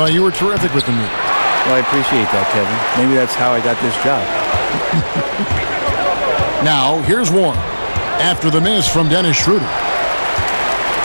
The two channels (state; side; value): inverted; both; correlation -1.00